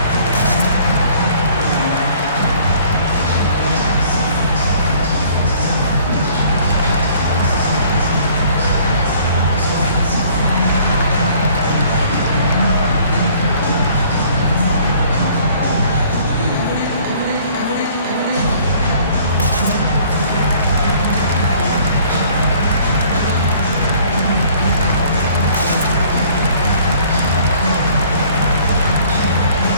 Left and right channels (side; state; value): both; inverted; correlation -0.56